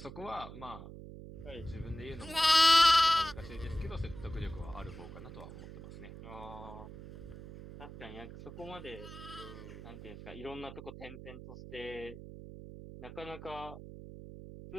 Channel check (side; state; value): right; noise; hum, 13 dB below the sound